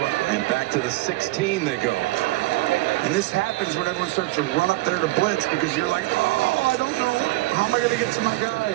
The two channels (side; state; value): left; quieter; 20.0 dB